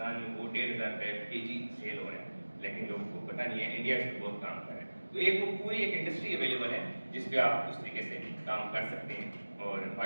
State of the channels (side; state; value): both; inverted; correlation -1.00